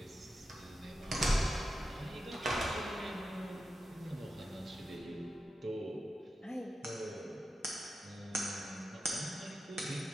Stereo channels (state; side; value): normal; both; correlation 0.90